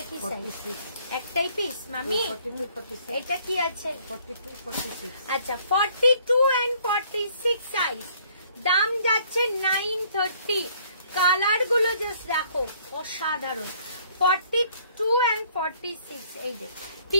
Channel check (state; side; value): inverted; both; correlation -0.61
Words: কি সাইজ? একটাই পিস মামি। এটা কি আছে? 42, 46। আচ্ছা 42 and 46 সাইজ, দাম যাচ্ছে 930। কালার গুলো জাস্ট দেখো, অসাধারণ। 42 and 46, এই যে